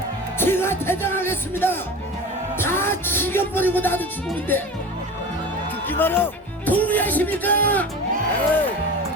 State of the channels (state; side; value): normal; both; correlation 0.33